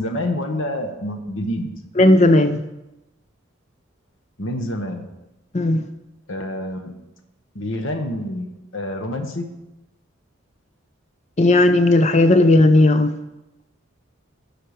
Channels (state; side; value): normal; both; correlation 0.69